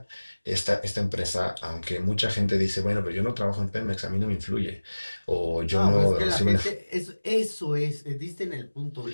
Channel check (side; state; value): both; inverted; correlation -1.00